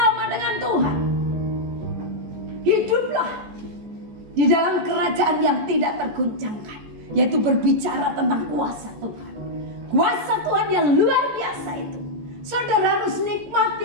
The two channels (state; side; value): late; left; 14 ms